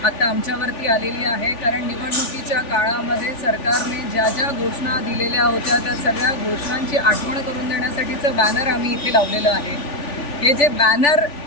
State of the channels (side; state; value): right; late; 3.4 ms